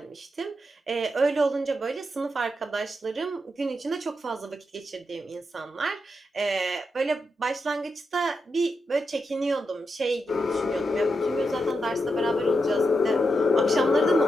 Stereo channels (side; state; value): both; normal; correlation 0.85